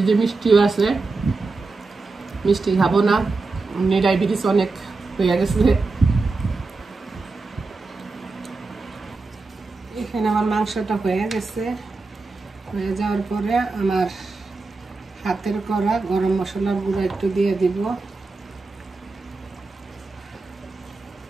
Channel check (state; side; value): quieter; left; 3.8 dB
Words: মিষ্টিও আছে। মিষ্টি খাবো না, এমনি ডায়াবেটিস অনেক হয়ে গেছে। এখানে আমার মাংসটা হয়ে গেছে। হয়ে যাওয়ার পরে আমার হাতের করা গরম মশলার গুঁড়া একটু দিয়ে দিব,